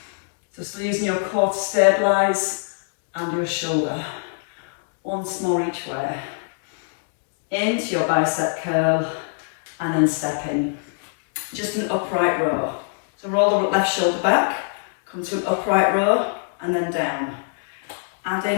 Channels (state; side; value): silent; right; digital silence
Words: So still using your core to stabilise and your shoulder. Once more each way. Into your bicep curl and then step in. Just an upright row. So roll the left shoulder back, come to an upright row and then down. Add